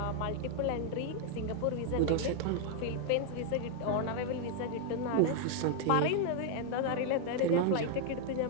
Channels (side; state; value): both; different; correlation 0.00